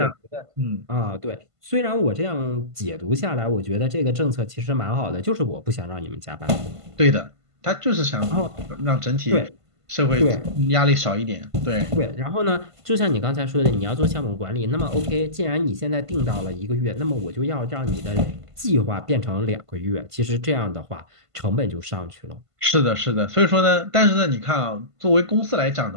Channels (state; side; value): late; left; 1.5 ms